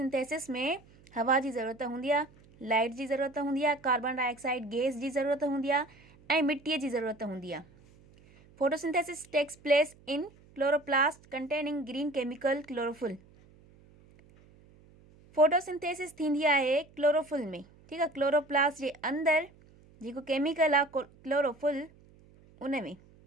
में हवा जी ज़रूरत हूंदी आहे, लाइट जी ज़रूरत हूंदी आहे, कार्बन डाइऑक्साइड गैस जी ज़रूरत हूंदी आहे ऐं मिटीअ जी ज़रूरत हूंदी आहे। Photosynthesis takes place in chloroplast containing green chemical chlorophyll. Photosynthesis थींदी आहे क्लोरोफुल में, ठीकु आहे, क्लोरोप्लास्ट जे अंदरि जेको केमिकल आहे क्लोरोफुल, उन में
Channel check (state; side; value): noise; right; hum, 27 dB below the sound